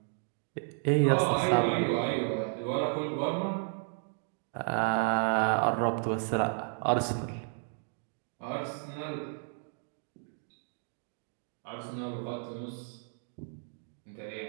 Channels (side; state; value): left; silent; 56 dB below the other